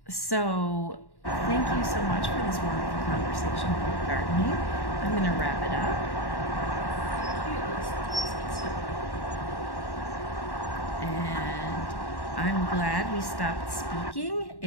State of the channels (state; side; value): late; right; 1.1 ms